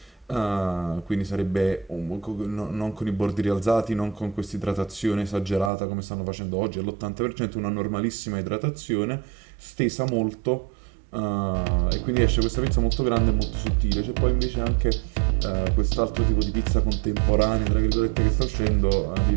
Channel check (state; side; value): drops out; left; at 5.7 s